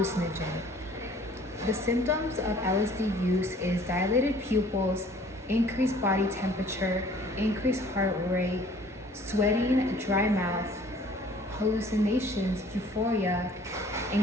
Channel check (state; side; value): normal; both; correlation 0.53